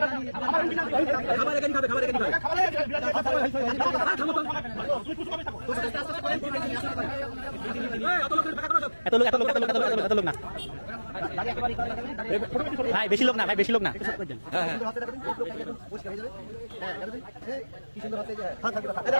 ভাই বেশি লোক না, ভাই বেশি লোক না।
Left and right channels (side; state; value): both; inverted; correlation -1.00